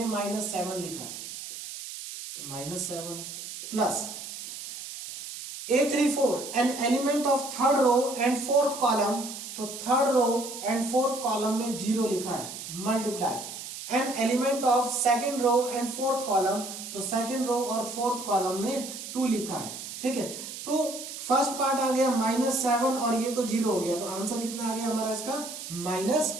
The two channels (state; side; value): noise; right; hiss, 10 dB below the sound